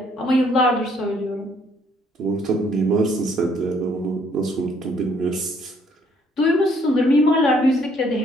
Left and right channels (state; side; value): normal; both; correlation 0.65